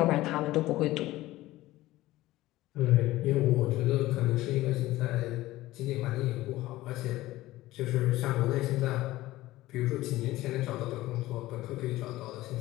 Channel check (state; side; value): quieter; right; 17.0 dB